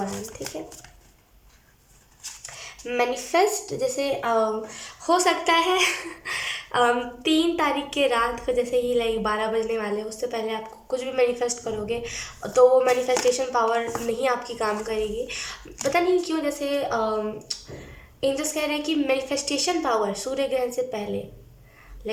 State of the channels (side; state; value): both; identical; correlation 1.00